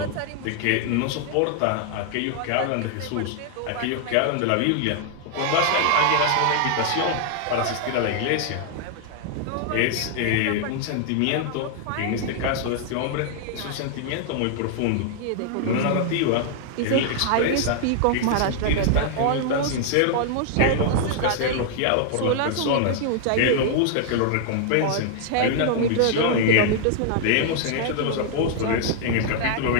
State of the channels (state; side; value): different; both; correlation -0.01